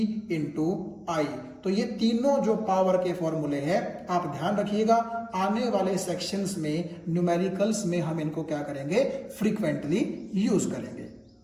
इंटू आई। तो ये तीनों जो पावर के फॉर्मूले हैं आप ध्यान रखिएगा, आने वाले सेक्शंस में न्यूमेरिकल्स में हम इनको क्या करेंगे? फ्रीक्वेंटली यूज करेंगे।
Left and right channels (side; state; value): both; identical; correlation 1.00